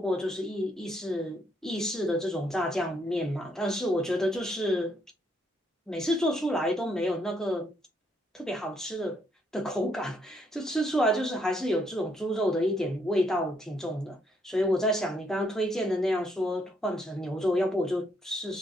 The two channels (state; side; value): normal; both; correlation 0.73